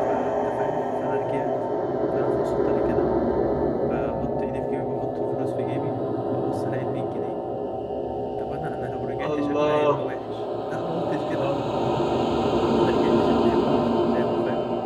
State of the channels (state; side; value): identical; both; correlation 1.00